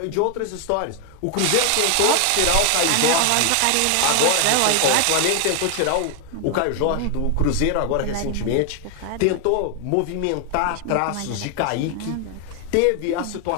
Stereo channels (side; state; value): both; different; correlation 0.00